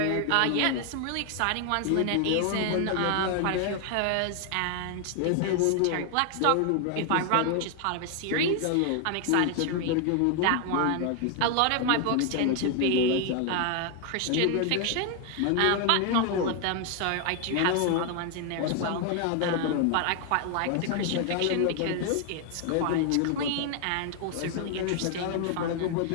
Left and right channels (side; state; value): both; different; correlation 0.00